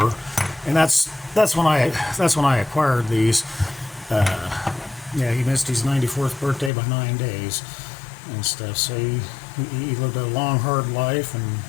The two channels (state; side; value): drops out; right; at 6.7 s